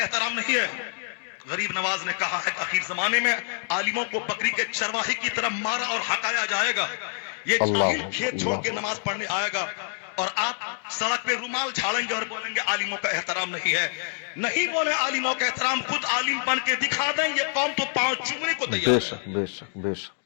नहीं है। गरीब नवाज ने कहा है कि आखिर जमाने में आलिमों को बकरी के चरवाही की तरह मारा और हकाया जाएगा। ये जाहिल खेत छोड़ के नमाज पढ़ने आएगा और आप सड़क पे रुमाल झाड़ेंगे और बोलेंगे आलिमों का एहतराम नहीं है। नहीं बोले आलिमों का एहतराम, खुद आलिम बन के दिखा दें, ये कौम तो पांव चूमने को तैयार है। बेशक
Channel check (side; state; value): right; silent; digital silence